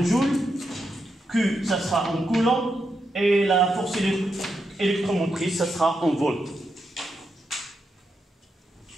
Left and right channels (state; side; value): normal; both; correlation 0.84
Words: joules, Q, ça sera en coulomb, et la force électromotrice, ça sera en volts.